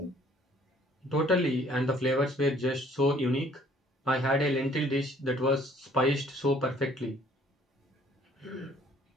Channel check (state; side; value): normal; both; correlation 0.58